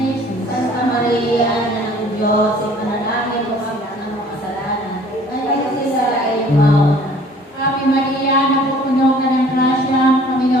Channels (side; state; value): both; normal; correlation 0.53